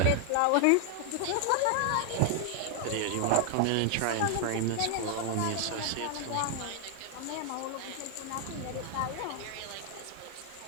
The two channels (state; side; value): different; both; correlation 0.00